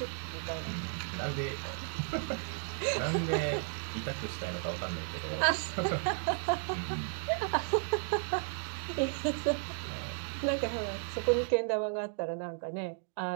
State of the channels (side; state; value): left; silent; 55 dB below the other